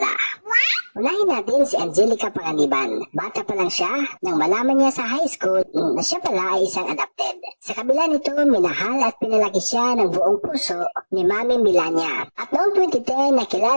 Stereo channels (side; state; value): both; inverted; correlation -1.00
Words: Unahin natin si Angelica Panganiban. Bata pa lang siya nang malaman niya sa high school na siya pala ay isang adopted. Sa kabila nito, minahal at pinalaki siya ng buong puso ni Mami Milania. At noong 2010,